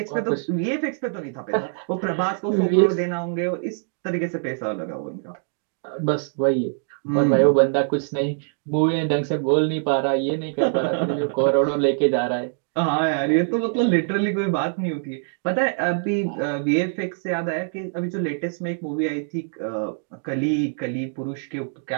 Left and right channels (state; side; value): silent; left; digital silence